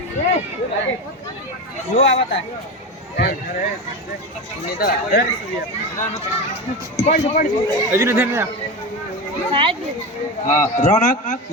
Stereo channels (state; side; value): normal; both; correlation 0.21